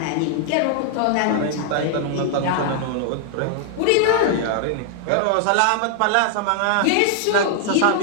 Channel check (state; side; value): different; both; correlation 0.00